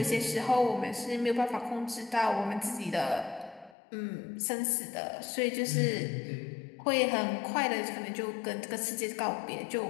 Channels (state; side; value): drops out; right; at 3.8 s